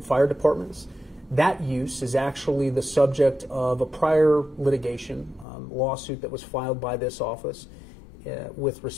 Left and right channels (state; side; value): drops out; right; at 5.5 s